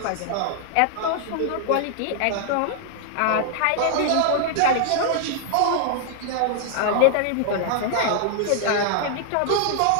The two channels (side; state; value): both; different; correlation 0.00